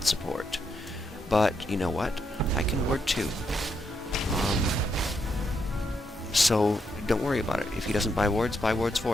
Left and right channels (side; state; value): both; normal; correlation 0.79